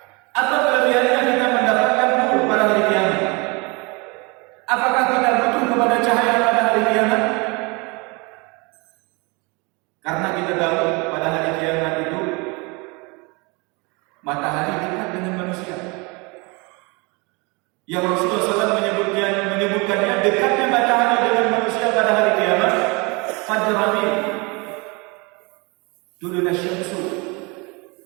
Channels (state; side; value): quieter; left; 28.3 dB